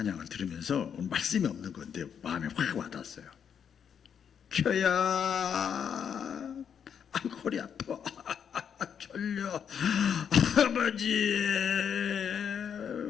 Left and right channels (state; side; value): quieter; right; 7.8 dB